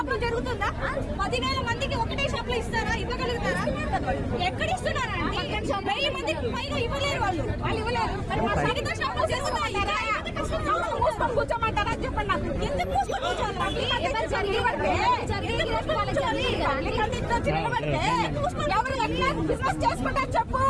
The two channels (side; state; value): both; identical; correlation 1.00